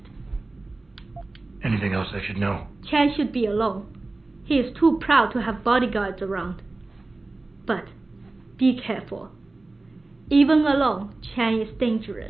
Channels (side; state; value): left; quieter; 3.1 dB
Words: Anything else I should know? Chan should be alone. He is too proud to have bodyguards around. But be careful. Even alone, Chan is